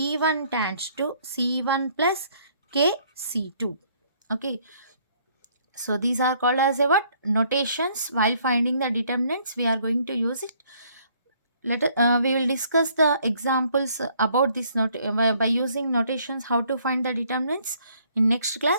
tends to C1 plus K C2. Okay. So these are called as a what? Notations. While finding the determinants, we are going to use it. We will discuss the examples about this by using notations, how to find the determinants in next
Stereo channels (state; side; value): inverted; both; correlation -0.64